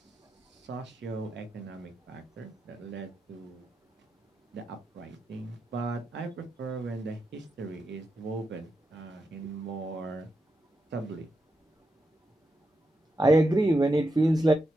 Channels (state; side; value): normal; both; correlation 0.86